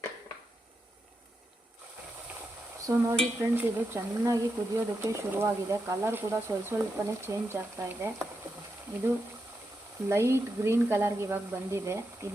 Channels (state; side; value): normal; both; correlation 0.86